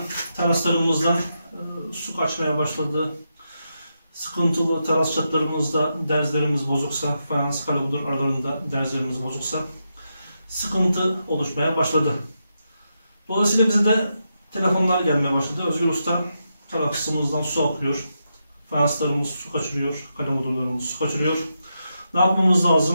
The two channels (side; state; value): both; inverted; correlation -0.85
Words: Teraslarımızdan su kaçmaya başladı. Sıkıntılı teras çatlarımızda derzlerimiz bozuksa, fayans kalabudur aralarında derzlerimiz bozuksa sıkıntı oluşmaya başladı. Dolayısıyla bize de telefonlar gelmeye başladı. Özgür Usta terasımızdan su akıyor. Fayanslarımız su kaçırıyor. Kalemudurlarımız su kaçırıyor. Ne yapmamız